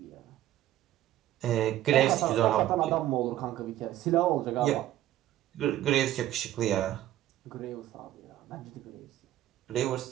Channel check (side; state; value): left; quieter; 13.5 dB